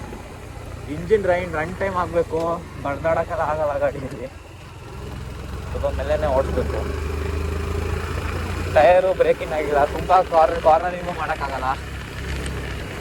ಇಂಜಿನ್ ರನ್ ಟೈಮ್ ಆಗಬೇಕು, ಬಡ್ದಾಡೋಕ್ಕೆಲ್ಲ ಆಗಲ್ಲ ಗಾಡಿಯಲ್ಲಿ. ಸ್ವಲ್ಪ ಮೇಲೇ ಓಡಿಸ್ಬೇಕು. ಟಯರು ಬ್ರೇಕಿಂಗ್ ಆಗಿಲ್ಲ, ತುಂಬ ಕಾರ್ನರಿಂಗು ಮಾಡೋಕ್ಕಾಗಲ್ಲ.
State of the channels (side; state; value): both; identical; correlation 1.00